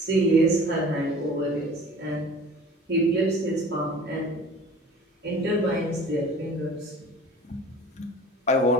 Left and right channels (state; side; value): normal; both; correlation 0.43